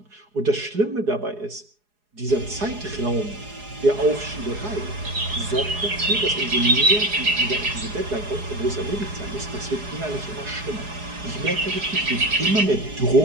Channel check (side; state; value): left; late; 4.8 ms